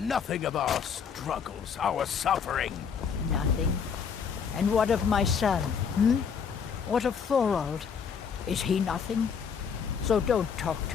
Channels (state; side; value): quieter; right; 6.6 dB